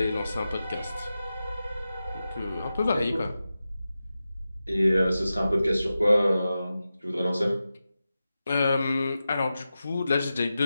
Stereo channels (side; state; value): both; inverted; correlation -0.92